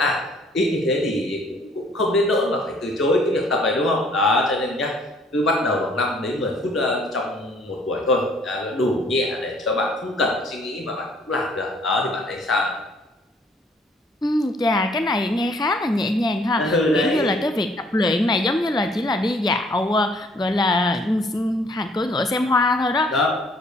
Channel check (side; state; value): both; normal; correlation 0.61